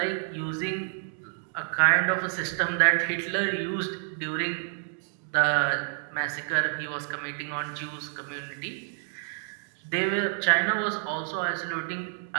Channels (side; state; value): left; silent; digital silence